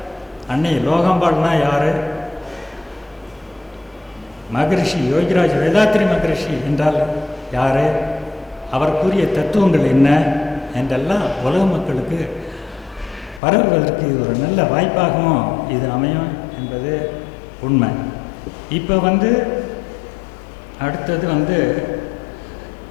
அன்னை லோகம்பாள்னா யார், மகரிஷி யோகிராஜ் வேதாத்ரி மகரிஷி என்றால் யார், அவர் கூறிய தத்துவங்கள் என்ன என்றெல்லாம் உலக மக்களுக்கு பரவுவதற்கு இது ஒரு நல்ல வாய்ப்பாகவும் இது அமையும் என்பது உண்மை. இப்போ அடுத்தது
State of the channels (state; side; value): drops out; right; at 13.4 s